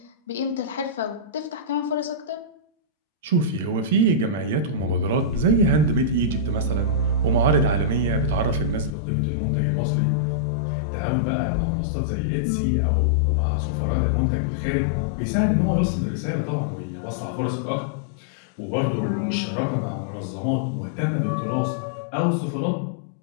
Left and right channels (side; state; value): right; drops out; at 9.0 s